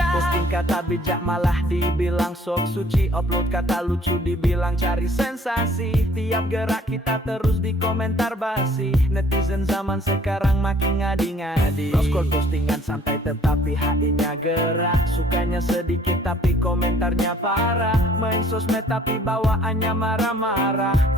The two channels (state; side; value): normal; both; correlation 0.57